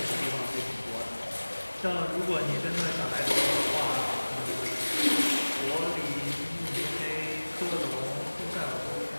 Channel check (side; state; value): both; inverted; correlation -1.00